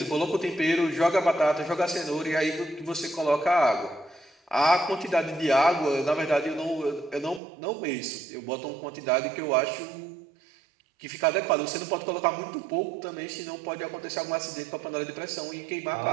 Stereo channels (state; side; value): drops out; left; at 7.4 s